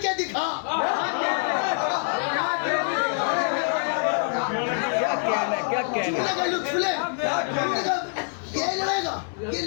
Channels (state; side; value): silent; right; 57 dB below the other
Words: دکھا. کیا کہنا کا لطف لے. یہ لڑے گا، یہ